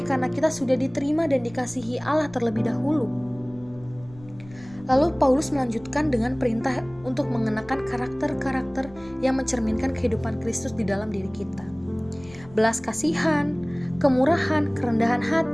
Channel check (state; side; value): noise; left; rumble, 22 dB below the sound